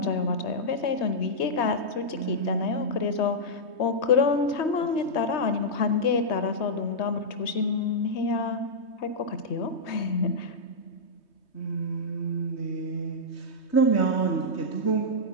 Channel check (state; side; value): late; right; 3.2 ms